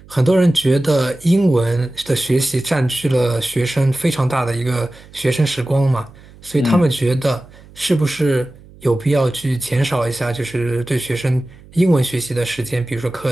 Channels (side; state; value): right; noise; hum, 23 dB below the sound